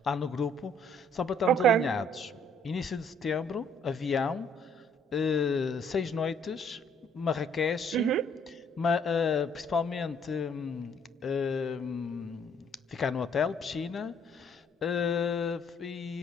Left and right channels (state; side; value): normal; both; correlation 0.63